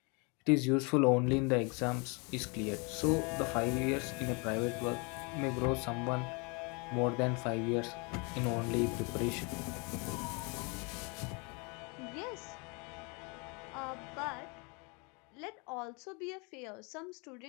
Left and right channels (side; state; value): right; quieter; 31.7 dB